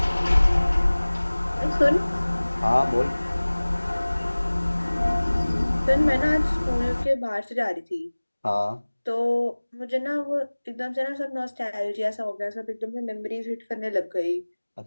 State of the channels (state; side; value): inverted; both; correlation -1.00